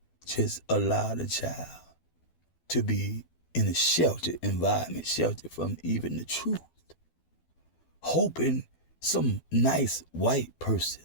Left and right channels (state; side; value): late; right; 12 ms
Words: just allow the child to be in a sheltered environment, sheltered from even the truth, hoping some nice white person